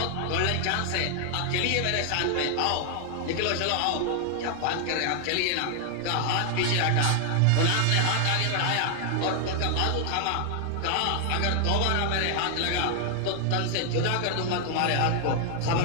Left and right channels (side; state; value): both; different; correlation 0.00